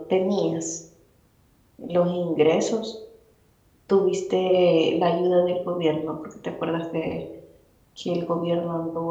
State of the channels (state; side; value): identical; both; correlation 1.00